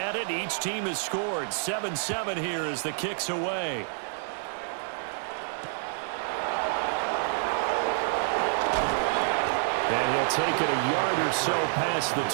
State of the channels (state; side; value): silent; left; digital silence